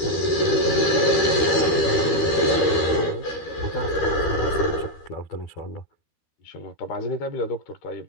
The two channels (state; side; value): late; right; 13 ms